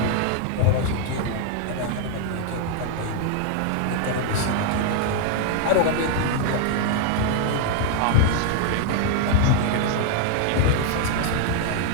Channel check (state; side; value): different; both; correlation 0.00